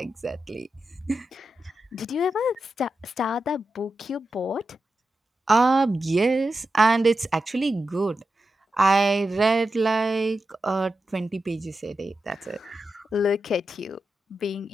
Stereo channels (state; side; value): normal; both; correlation 0.90